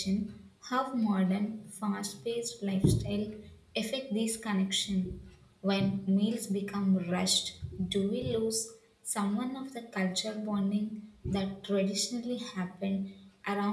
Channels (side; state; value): both; identical; correlation 1.00